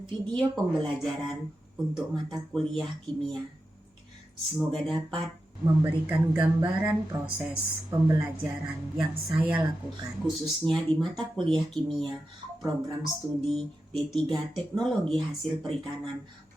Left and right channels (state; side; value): normal; both; correlation 0.90